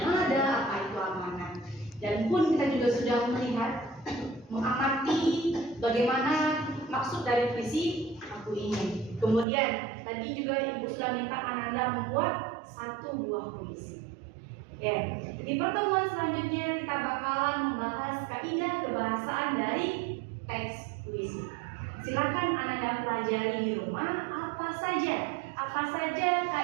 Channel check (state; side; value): drops out; left; at 9.5 s